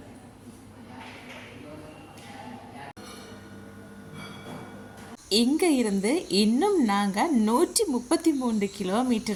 இங்கே இருந்து இன்னும் நாங்கள் 133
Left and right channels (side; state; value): both; identical; correlation 1.00